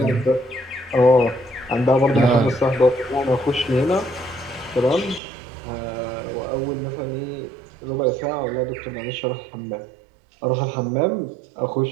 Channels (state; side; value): drops out; left; at 5.2 s